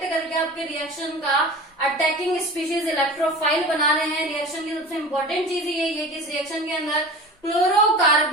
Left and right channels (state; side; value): normal; both; correlation 0.36